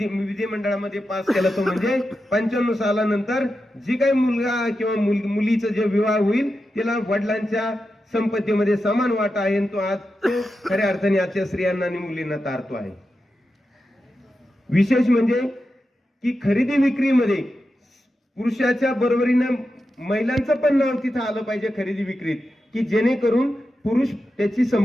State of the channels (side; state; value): both; normal; correlation 0.90